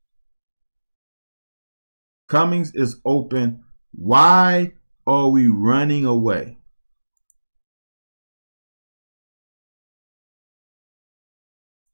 Cummings is open. Why are we running away?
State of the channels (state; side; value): inverted; both; correlation -1.00